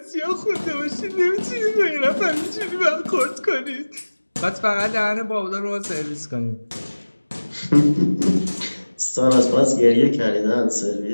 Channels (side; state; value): both; inverted; correlation -1.00